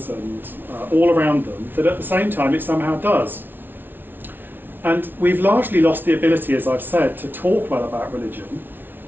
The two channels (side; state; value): left; late; 0.096 ms